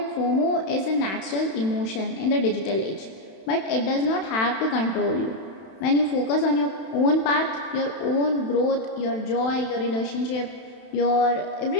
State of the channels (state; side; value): late; right; 31 ms